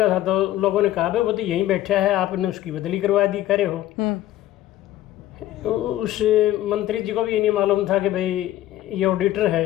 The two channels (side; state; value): right; quieter; 14.1 dB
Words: था तो लोगों ने कहा भाई वो तो यहीं बैठा है, आपने उसकी बदली करवा दी, करे हो। उस मंत्री जी को भी ये नहीं मालूम था कि भाई ये ऑडिटर है।